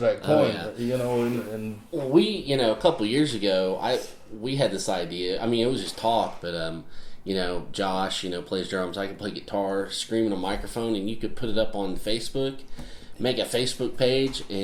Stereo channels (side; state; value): both; identical; correlation 1.00